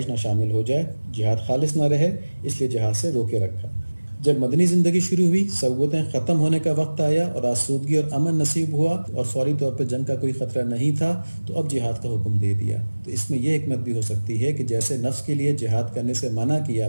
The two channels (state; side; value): inverted; both; correlation -1.00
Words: نہ شامل ہو جائے، جہاد خالص نہ رہے، اس لیے جہاد سے روکے رکھا۔ جب مدنی زندگی شروع ہوئی، صعوبتیں ختم ہونے کا وقت آیا اور آسودگی اور امن نصیب ہوا اور فوری طور پہ جنگ کا کوئی خطرہ نہیں تھا، تو اب جہاد کا حکم دے دیا۔ تو اس میں یہ حکمت بھی ہو سکتی ہے کہ جیسے نفس کے لیے جہاد کرنے سے منع کیا